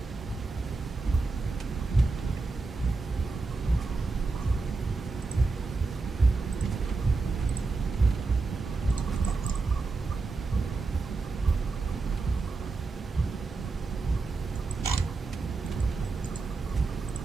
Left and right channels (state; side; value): quieter; left; 3.9 dB